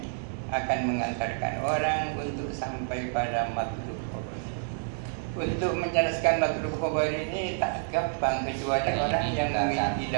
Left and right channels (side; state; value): left; silent; digital silence